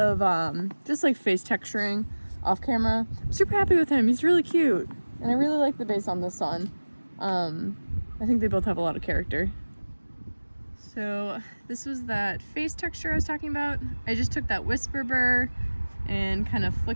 just like face texturing off camera. I'm super happy with him. He's really cute. And I really like the base on this one. I think they both have a lot of character. So this was that face texture I was talking about. I just took that Whisper burr and kind of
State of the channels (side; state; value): both; inverted; correlation -1.00